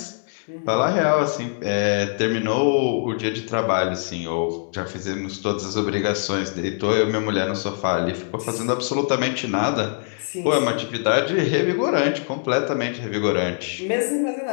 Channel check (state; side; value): silent; right; digital silence